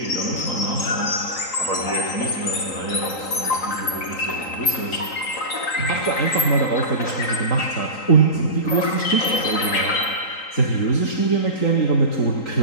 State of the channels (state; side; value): late; right; 3.8 ms